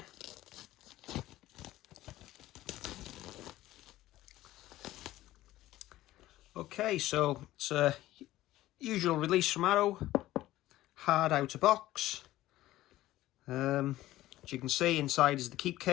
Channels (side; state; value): right; quieter; 15.6 dB